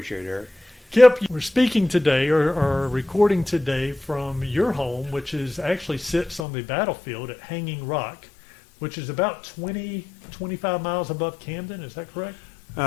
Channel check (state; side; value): drops out; right; at 6.5 s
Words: it, Eric. Kip, we're speaking today or recording today from your home, which actually sits on the battlefield at Hanging Rock, which is about 25 miles above Camden. Is that correct?